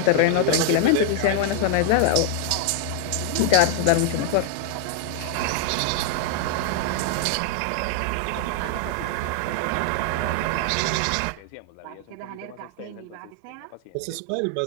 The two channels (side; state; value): both; different; correlation 0.00